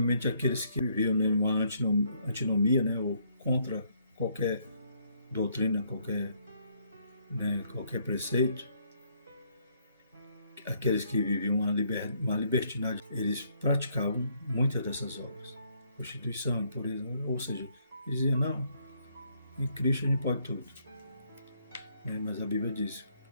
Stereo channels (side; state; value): both; inverted; correlation -0.69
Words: aqueles que viviam numa antinomia, né, ou contra qualquer doutrina, qualquer preceito, aqueles que viviam uma libertinagem, eles praticavam muitas dessas obras. Prostituição, impureza, ou seja, eles diziam, não, em Cristo a gente pode tudo. Mas a Bíblia diz,